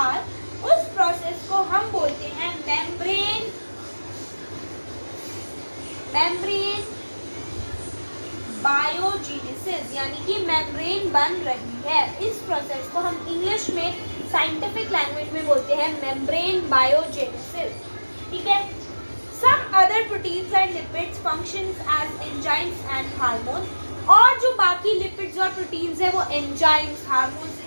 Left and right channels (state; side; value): inverted; both; correlation -1.00